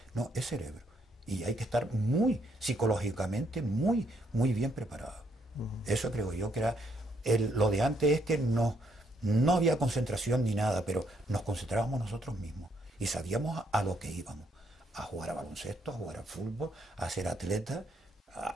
No, es cerebro. Y hay que estar muy psicológicamente, muy bien preparado. Eso creo yo que era... lo de antes es que no había concentración ni nada, pero nos concentrábamos nosotros mismos. Y sabíamos a lo que íbamos. A jugar a baloncesto, a jugar al fútbol, a ser atleta,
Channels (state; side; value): normal; both; correlation 0.72